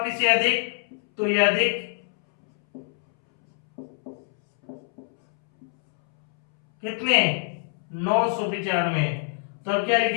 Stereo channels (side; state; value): right; silent; 62 dB below the other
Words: ये अधिक, तो ये अधिक कितने 995, तो क्या